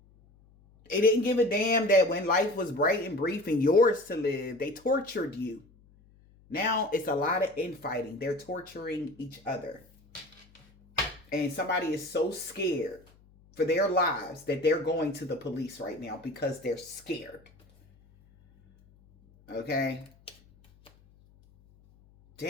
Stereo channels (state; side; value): noise; left; hum, 28 dB below the sound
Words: They didn't give a damn that when life was bright and brief and yours to live, they tortured you. Now it's a lot of infighting. They're torturing each other. And somebody is so scared for their lives that they're going to the police right now because they're scared. Okay?